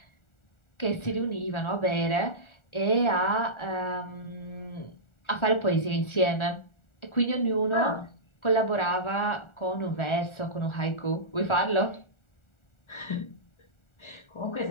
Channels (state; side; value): late; right; 1.4 ms